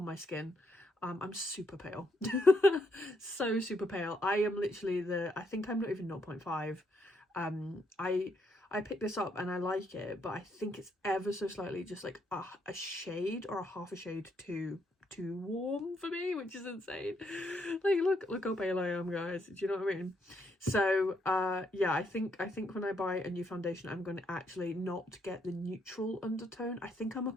my skin. I'm super pale. So super pale. I am literally I think I'm not even 0.5. I picked this up and I like it, but I think it's ever so slightly just like a shade or a half a shade too warm for me, which is insane. Like look how pale I am, guys. Do you know what I mean? So yeah, I think when I buy a new foundation, I'm going to actually not get the neutral undertone. I think I'm a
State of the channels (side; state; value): both; normal; correlation 0.75